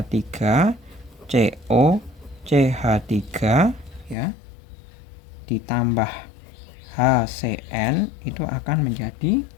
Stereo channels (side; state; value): right; drops out; at 4.2 s